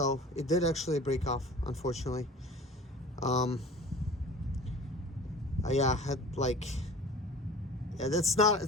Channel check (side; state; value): both; normal; correlation 0.41